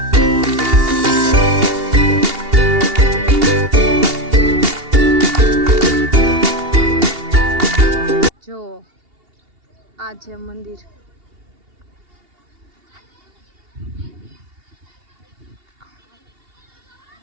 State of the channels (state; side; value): late; left; 2.8 ms